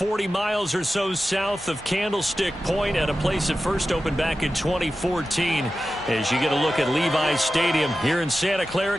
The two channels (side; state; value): both; normal; correlation 0.93